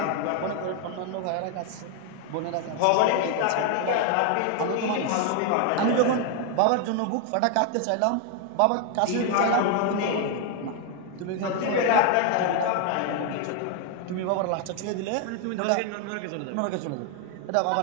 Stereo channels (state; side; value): different; both; correlation 0.01